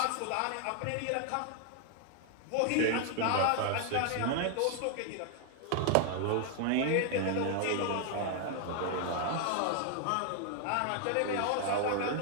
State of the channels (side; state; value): both; different; correlation 0.00